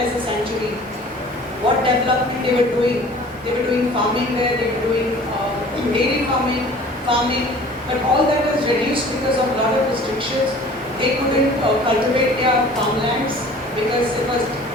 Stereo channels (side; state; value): both; normal; correlation 0.47